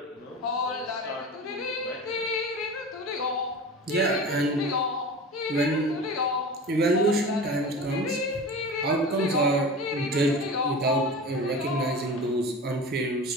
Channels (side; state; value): both; normal; correlation 0.33